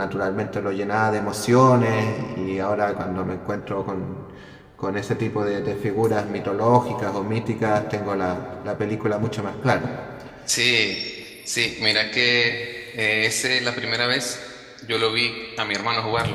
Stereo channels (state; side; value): identical; both; correlation 1.00